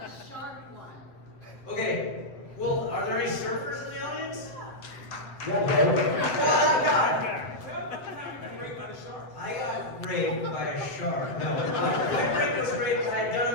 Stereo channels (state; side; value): late; right; 7.8 ms